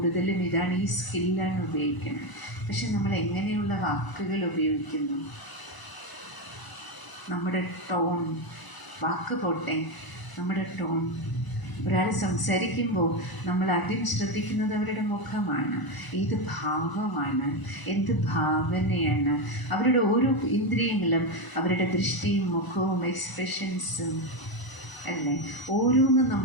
ഇതാണ്, ഈ സ്കില്ലാണ് ഉപയോഗിക്കുന്നത്. പക്ഷെ നമ്മൾ എങ്ങനെയുള്ള വാക്കുകൾ ഉപയോഗിക്കുന്നു? നമ്മുടെ ടോൺ, വാക്ക് പോട്ടെ, നമ്മുടെ ടോൺ. ഒരാൾ സംസാരിക്കുമ്പോൾ നമ്മൾ ആദ്യം ശ്രദ്ധിക്കുന്നത് അവരുടെ മുഖമാണ്, ഏത് ഭാവമാണ്, എന്ത് ഭാവനയാണ്. അവരുടെ ഓരോ ഇന്ദ്രിയങ്ങളും, അവരുടെ ദൃഷ്ടിയും മുഖവും എക്സ്പ്രഷൻസും അല്ലേ, ഓരോന്നും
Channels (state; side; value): late; right; 1.0 ms